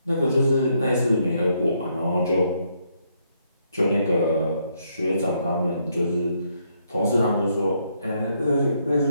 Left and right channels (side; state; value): both; inverted; correlation -0.74